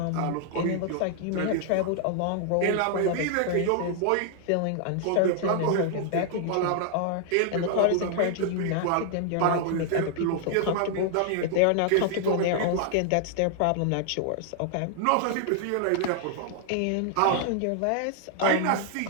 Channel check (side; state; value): both; different; correlation 0.00